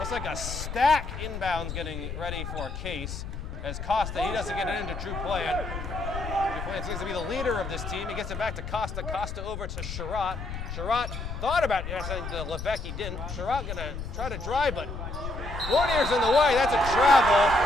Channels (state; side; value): noise; left; rumble, 7 dB below the sound